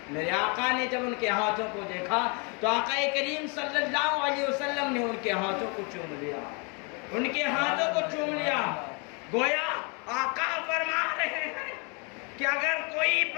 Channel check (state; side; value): quieter; right; 32.3 dB